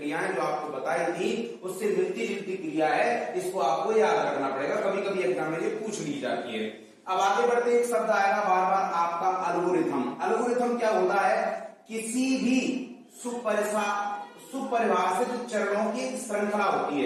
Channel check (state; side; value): identical; both; correlation 1.00